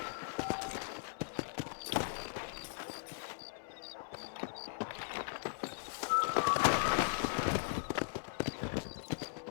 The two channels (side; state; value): right; silent; 52 dB below the other